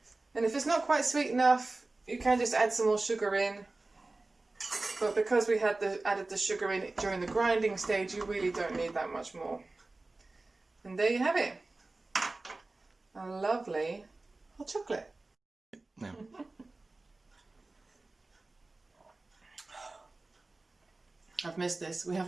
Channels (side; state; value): left; quieter; 3.2 dB